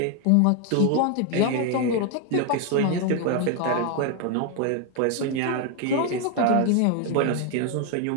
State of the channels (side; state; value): both; different; correlation 0.01